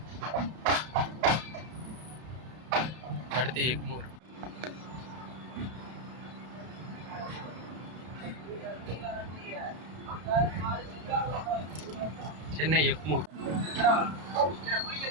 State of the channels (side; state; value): left; late; 32 ms